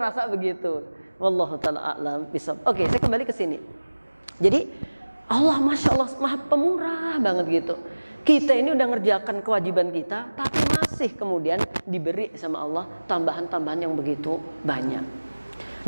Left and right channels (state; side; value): inverted; both; correlation -1.00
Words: begitu. Wallahu ta'ala a'lam bishawab. Oke, saya kembali ke sini. Jadi Allah Masya Allah maha pemurah banget gitu. Kita ini udah ngerjakan kewajiban kita, tapi masih kemudian diberi sama Allah tambahan-tambahan yang begitu banyak.